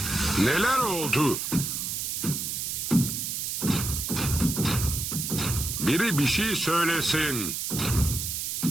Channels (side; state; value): right; noise; hiss, 3 dB below the sound